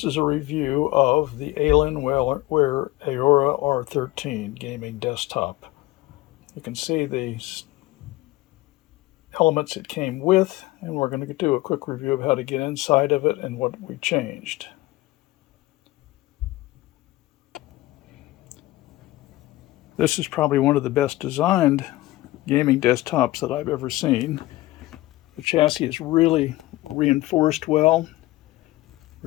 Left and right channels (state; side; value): quieter; right; 18.3 dB